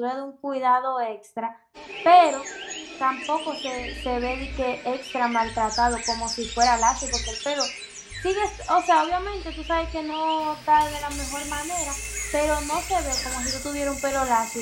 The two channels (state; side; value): identical; both; correlation 1.00